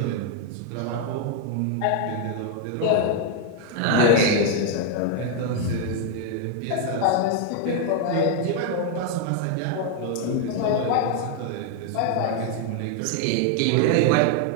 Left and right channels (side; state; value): both; different; correlation 0.00